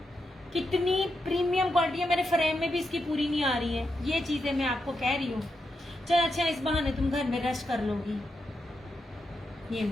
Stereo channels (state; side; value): normal; both; correlation 0.85